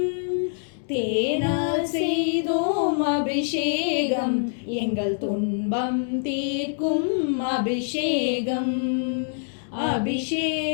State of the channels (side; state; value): right; silent; digital silence